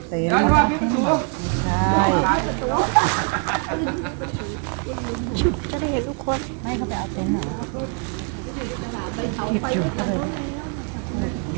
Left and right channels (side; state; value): left; quieter; 39.6 dB